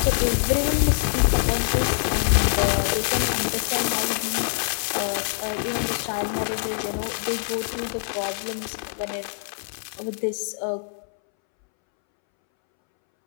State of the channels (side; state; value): right; silent; 62 dB below the other